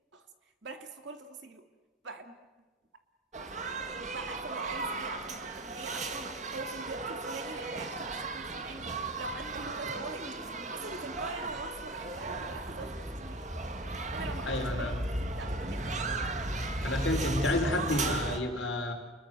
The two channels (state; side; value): normal; both; correlation 0.35